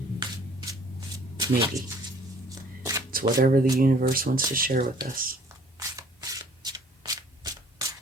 Maybe. It's whatever the universe wants to share with us.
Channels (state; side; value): normal; both; correlation 0.56